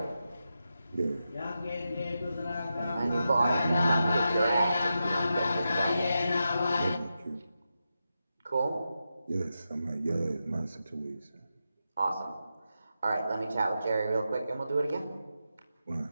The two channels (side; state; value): both; inverted; correlation -0.88